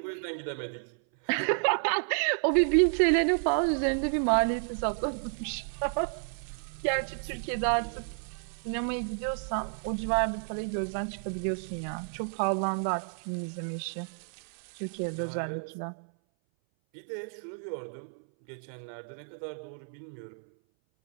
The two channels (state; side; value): silent; left; 57 dB below the other